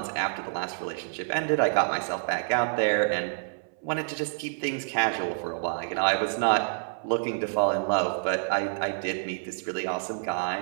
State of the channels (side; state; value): left; silent; 59 dB below the other